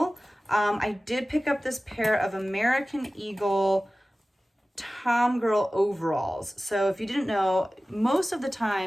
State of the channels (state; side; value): normal; both; correlation 0.97